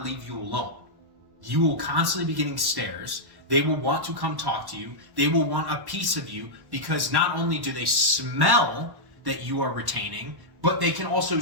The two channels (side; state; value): left; late; 1.1 ms